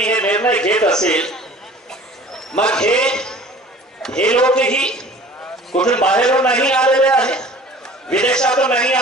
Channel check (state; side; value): normal; both; correlation 0.46